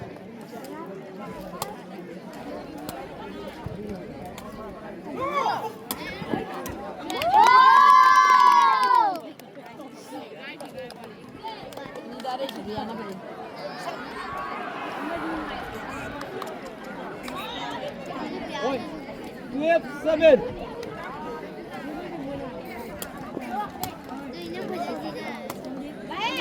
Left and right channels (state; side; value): identical; both; correlation 1.00